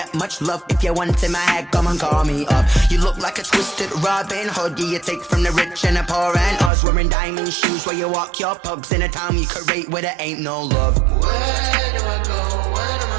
much love. If you want in my head, come and call me up. You look like a twisted Robin Hood. You take from the rich and the poor and us. Wearing diamond shoes where you walk your pugs in a town you create where there ain't no love. Where do I go? When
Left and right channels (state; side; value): drops out; left; at 6.7 s